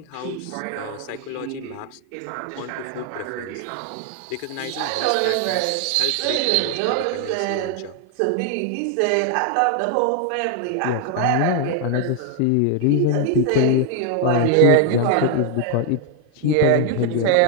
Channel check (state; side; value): different; both; correlation 0.01